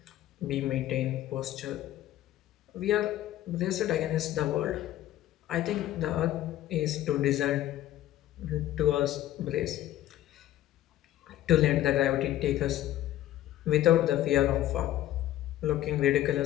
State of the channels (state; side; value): quieter; right; 13.6 dB